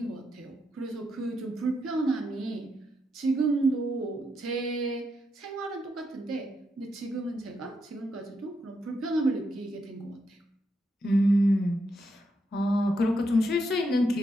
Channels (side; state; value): both; normal; correlation 0.81